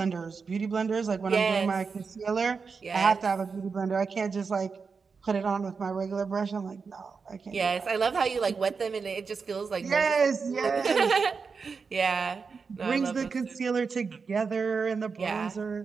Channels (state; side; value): quieter; left; 5.2 dB